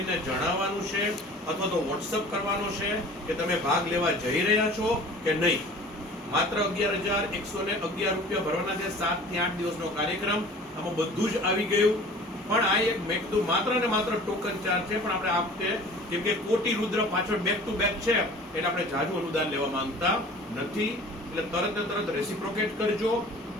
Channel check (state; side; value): normal; both; correlation 0.44